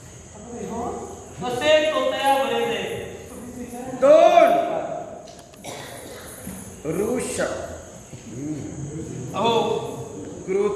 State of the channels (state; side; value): identical; both; correlation 1.00